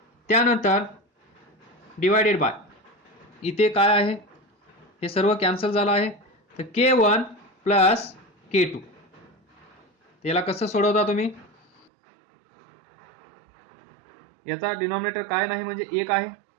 त्यानंतर डिवायडेड बाय इथे काय आहे हे सर्व कॅन्सल झालं आहे, तर K1 प्लस K2. त्याला कसं सोडवता तुम्ही, याचा डिनॉमिनेटर काय नाही म्हणजे एक आहे,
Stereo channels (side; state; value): left; drops out; at 11.9 s